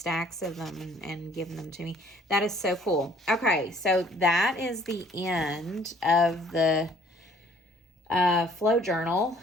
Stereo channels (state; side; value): normal; both; correlation 0.58